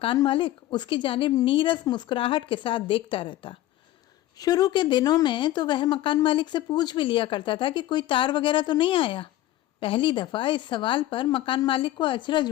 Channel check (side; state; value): right; quieter; 14.7 dB